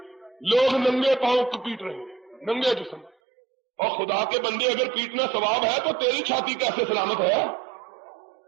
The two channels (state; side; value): drops out; left; at 3.2 s